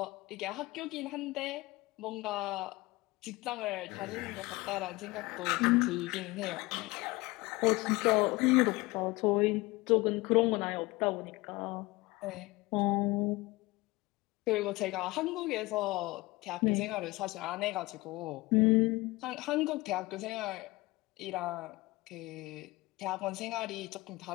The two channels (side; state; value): right; quieter; 21.6 dB